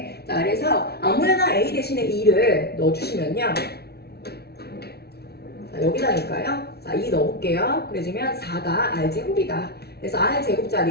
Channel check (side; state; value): right; late; 0.47 ms